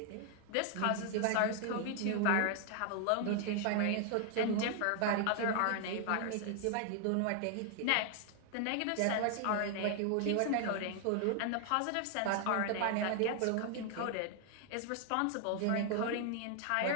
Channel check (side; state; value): both; different; correlation 0.00